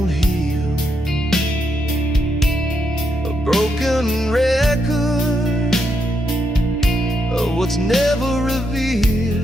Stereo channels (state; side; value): normal; both; correlation 0.80